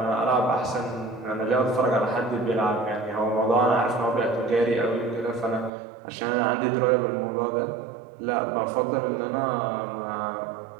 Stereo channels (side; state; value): left; drops out; at 5.7 s